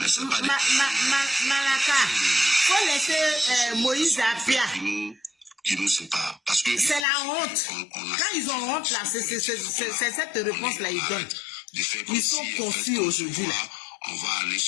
c'est pas Malaka, faut laisser Moïse Apia. Qui nous sépare. Parce que c'est la honte. Quand ils ont honte là, c'est cette réponse-là ils donnent. Ils sont confus aujourd'hui là. On va aller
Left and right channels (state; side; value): drops out; right; at 7.1 s